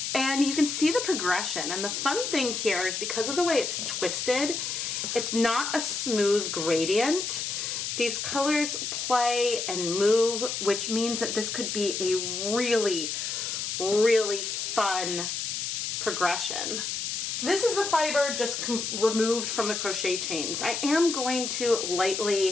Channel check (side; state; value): left; noise; hiss, 3 dB below the sound